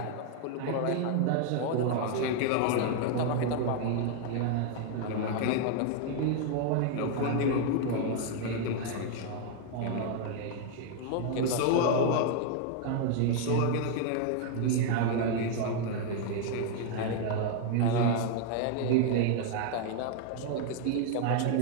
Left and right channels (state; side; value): different; both; correlation 0.00